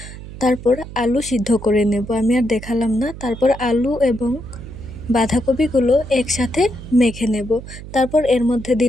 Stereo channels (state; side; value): noise; right; hum, 13 dB below the sound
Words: তারপর আলু সিদ্ধ করে নেব, আমি আর দেখালাম না। তারপর আলু এবং বাঁধাকপিগুলো একসাথে মেখে নেব। তারপর এর মধ্যে